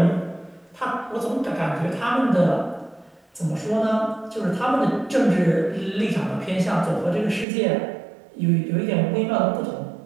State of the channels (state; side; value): drops out; left; at 7.5 s